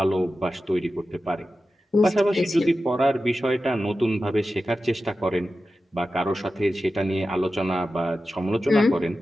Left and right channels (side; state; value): both; normal; correlation 0.93